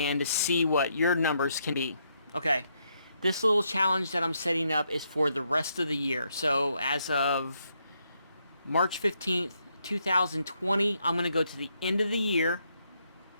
to see what your numbers can be. Okay, this little challenge that I'm setting up is for the rest of the year. So as of March 15th, 2020, I'm going to go to the end of the year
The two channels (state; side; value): inverted; both; correlation -0.77